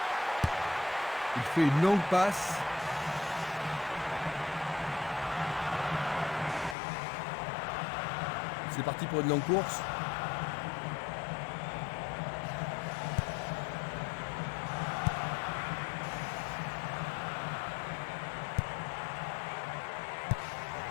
Il fait une longue passe. C'est parti pour une longue course.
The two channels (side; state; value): right; drops out; at 6.8 s